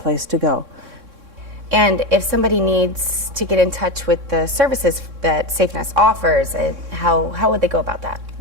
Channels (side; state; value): left; late; 3.6 ms